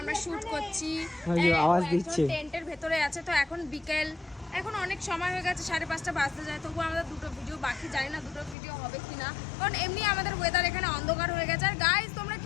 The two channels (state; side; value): drops out; right; at 8.6 s